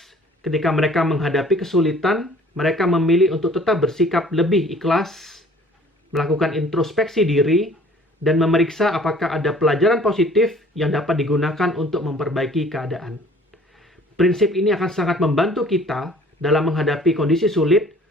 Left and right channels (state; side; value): normal; both; correlation 0.52